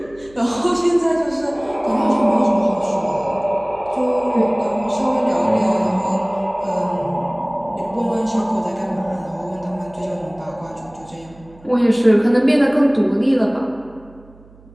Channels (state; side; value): noise; right; hum, 25 dB below the sound